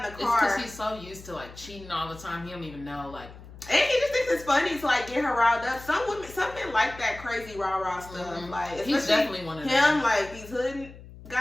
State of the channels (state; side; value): noise; left; hum, 17 dB below the sound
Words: the car. It's because he's so used to, like, cheating all the time, he don't even know, like. And he just thinks it's funny to, like, get her riled up. Some men like that crazy rah-rah stuff. Mm-hmm. Like, he's definitely one of them. Him, like, these hood